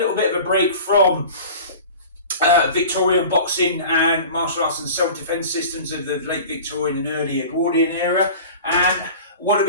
bit of a break from Victorian boxing and martial arts and self-defense systems of the late Victorian and early Edwardian era. And what are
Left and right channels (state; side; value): inverted; both; correlation -0.38